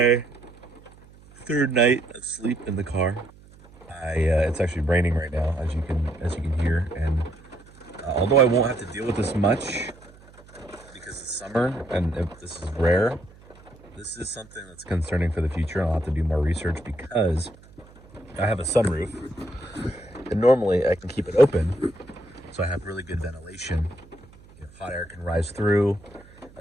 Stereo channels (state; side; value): noise; right; hum, 24 dB below the sound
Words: third night of sleep in the car. It's actually raining right now, as you can hear, and although I won't have to deal with this much because it's summer and if this is rare, this is something that's concerning for the future. I'll have to do more research because I have a sunroof, and normally I can keep it open. So I have really good ventilation. Hot air can rise through,